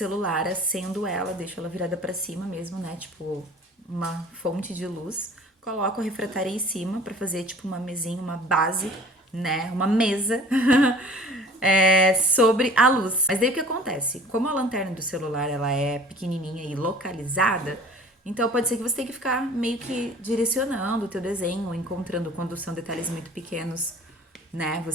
acendo ela, deixo ela virada pra cima mesmo, né? Tipo, uma fonte de luz. Coloco a refratária em cima pra fazer tipo uma mesinha, uma base, né? Uma mesa sobre a luz. Mas daí o que acontece? Como a lanterna do celular ela é pequenininha e localizada, então pode ser que você tenha que ficar meio que direcionando o teu desenho, encontrando quando são detalhes muito pequenos, né?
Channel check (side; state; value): both; normal; correlation 0.47